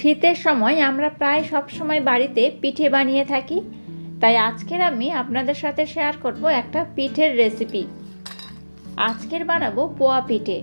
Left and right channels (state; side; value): inverted; both; correlation -1.00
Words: সময় আমরা প্রায় সব সময় বাড়িতে পিঠে বানিয়ে থাকি, তাই আজকের আমি আপনাদের সাথে শেয়ার করব একটা পিঠের রেসিপি। আজকের বানাবো পোয়া পিঠে।